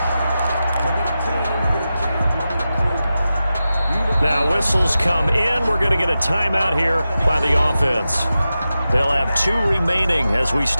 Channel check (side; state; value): both; inverted; correlation -0.92